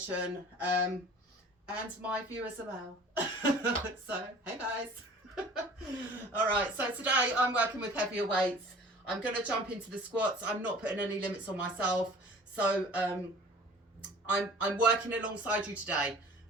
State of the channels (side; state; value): both; normal; correlation 0.46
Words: and my viewers as well. So, hey guys. All right, so today I'm working with heavier weights. I'm going to jump into the squats. I'm not putting any limits on myself. So I'm working alongside you today.